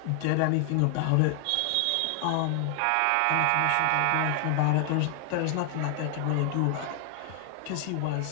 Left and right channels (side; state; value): both; different; correlation 0.00